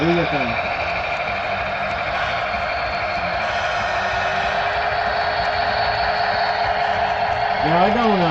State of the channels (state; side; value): identical; both; correlation 1.00